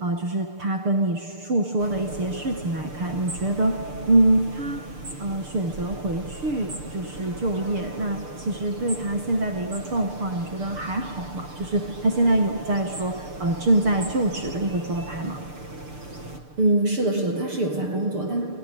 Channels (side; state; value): left; late; 6.7 ms